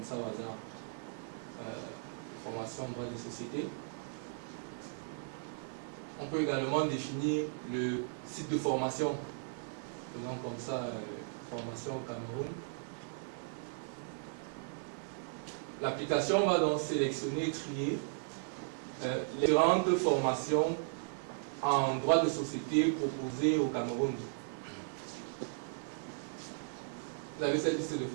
ça au hasard, formation droit des sociétés. On peut également définir le site de formation, faisant comme ça, formation au Cameroun. L'application va donc sélectionner et trier les différentes formations en droit de société proposées au Cameroun. Vous avez cette liste de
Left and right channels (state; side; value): silent; left; 53 dB below the other